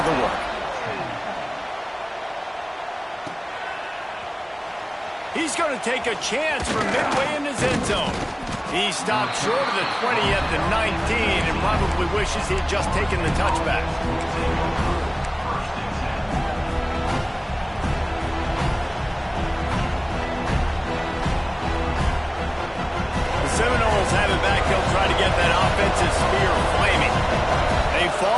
the work. He's going to take a chance from midway in his end zone. He stopped short of the 20 at the 19 and probably wishes he'd just taken the touchback. Seminoles have it back. They'll try to get that offensive spear flaming. They've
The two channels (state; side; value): identical; both; correlation 1.00